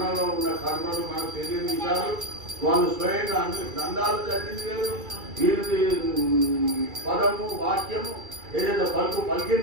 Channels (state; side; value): late; left; 2.3 ms